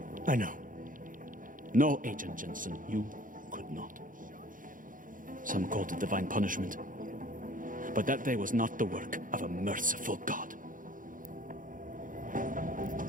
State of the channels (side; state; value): left; late; 0.39 ms